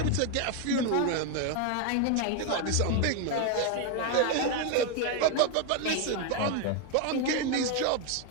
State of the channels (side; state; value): both; different; correlation 0.01